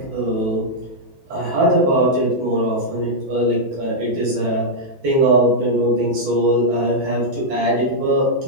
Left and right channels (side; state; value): left; late; 12 ms